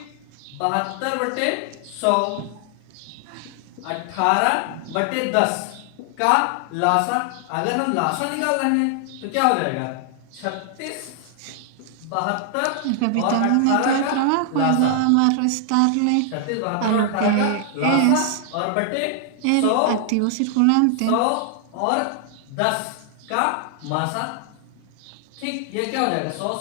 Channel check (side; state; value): both; different; correlation 0.00